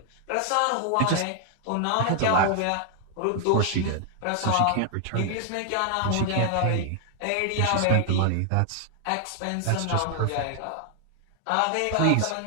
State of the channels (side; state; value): both; different; correlation 0.00